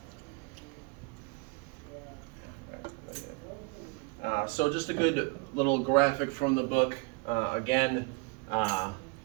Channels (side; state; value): left; quieter; 30.6 dB